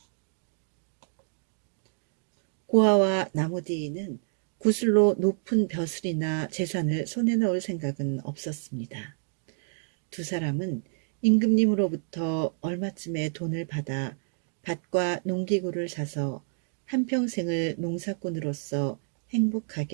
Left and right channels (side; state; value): left; silent; digital silence